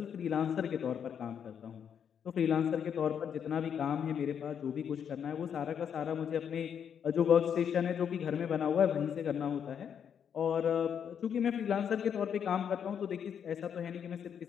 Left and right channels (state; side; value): quieter; right; 8.0 dB